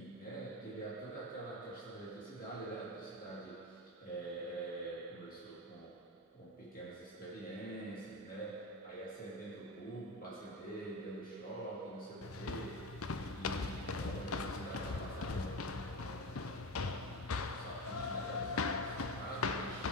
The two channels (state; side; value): normal; both; correlation 0.23